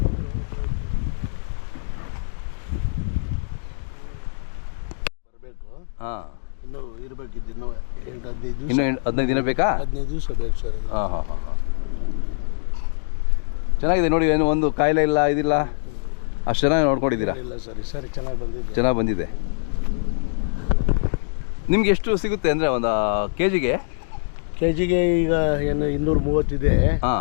ಬರಬೇಕು. ಹಾಂ. ಇನ್ನೂ ಇರಬೇಕಿದ್ದು ಇನ್ನೂ 15 ದಿವಸ. ಇನ್ನೂ 15 ದಿನ ಬೇಕಾ? 15 ದಿವಸ ಬೇಕು ಸರ್. ಹಾಂ. ಚೆನ್ನಾಗಿದೆ ನೋಡಿ, ಏನು ಒಂದು ಕಾಯಿಲೆ ಇಲ್ಲ, ಇದಿಲ್ಲ, ಅಷ್ಟು ಚೆನ್ನಾಗಿ ನೋಡ್ಕೊಂಡಿದ್ದೀರಾ? ಇಲ್ಲ ಸರ್, ಸರಿ ಚೆನ್ನಾಗಿ ಬಂದಿದೆ. ನಿಮ್ಗೆ ಎಷ್ಟು ಸಿಗುತ್ತೆ ಅಂದರೆ ಒಂದು ಕೆಜಿಗೆ ಈಗ ಏನು 230 ಇದೆ.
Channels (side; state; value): right; silent; digital silence